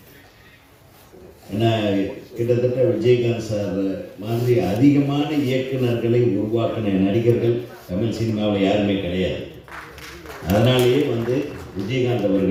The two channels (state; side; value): identical; both; correlation 1.00